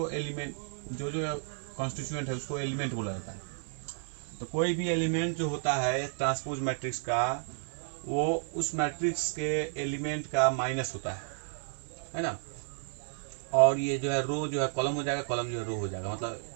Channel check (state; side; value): silent; left; 56 dB below the other